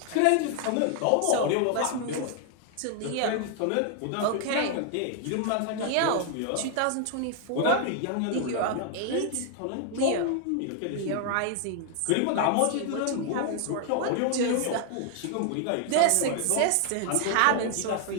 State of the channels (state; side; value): different; both; correlation 0.00